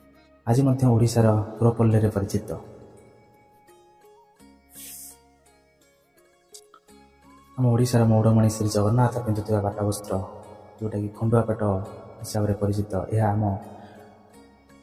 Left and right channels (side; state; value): both; identical; correlation 1.00